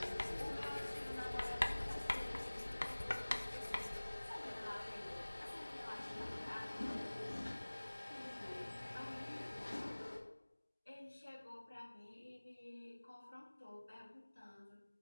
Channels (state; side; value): inverted; both; correlation -1.00